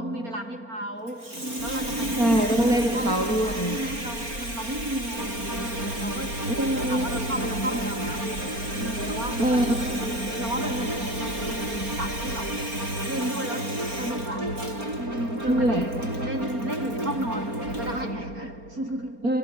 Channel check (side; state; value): left; late; 4.3 ms